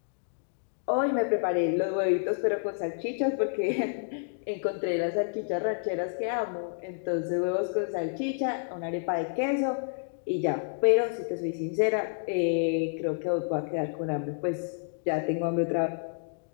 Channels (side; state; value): right; silent; digital silence